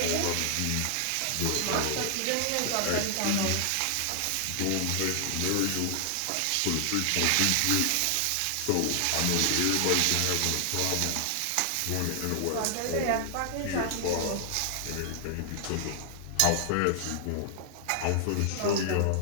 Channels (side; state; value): both; different; correlation 0.00